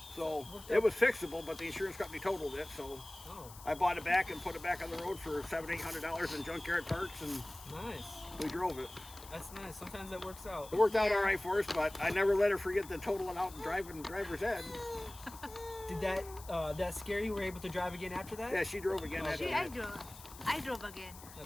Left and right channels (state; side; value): noise; left; hiss, 17 dB below the sound